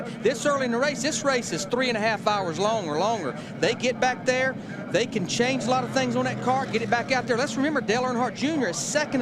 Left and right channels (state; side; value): identical; both; correlation 1.00